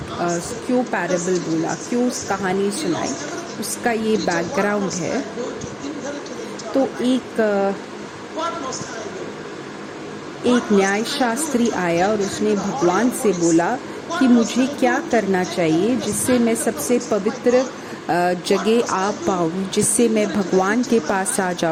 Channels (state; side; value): identical; both; correlation 1.00